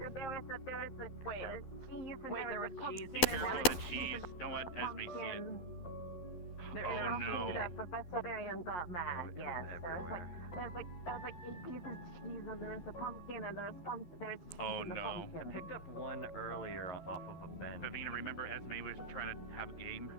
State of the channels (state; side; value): late; right; 12 ms